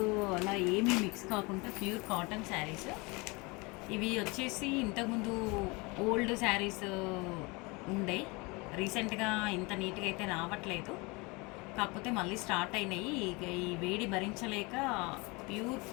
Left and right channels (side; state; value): right; quieter; 26.7 dB